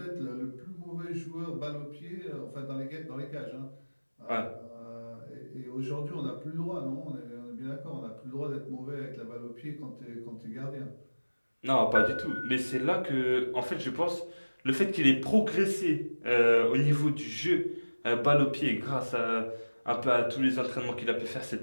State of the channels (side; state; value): both; inverted; correlation -1.00